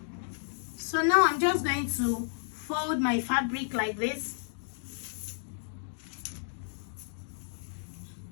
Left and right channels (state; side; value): silent; right; digital silence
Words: So now I'm just going to fold my fabric like this.